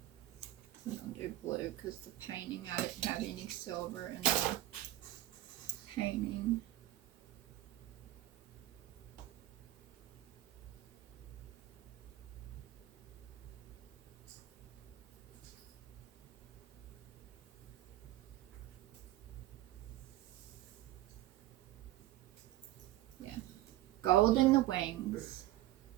I'm gonna do blue because the painting, I didn't have any silver in the painting. Gold in the wings,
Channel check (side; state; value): left; quieter; 15.4 dB